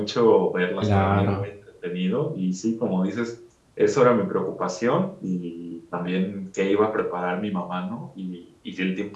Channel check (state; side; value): identical; both; correlation 1.00